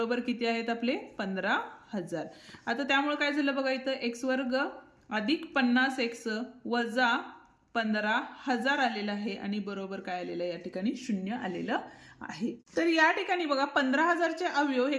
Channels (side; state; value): both; identical; correlation 1.00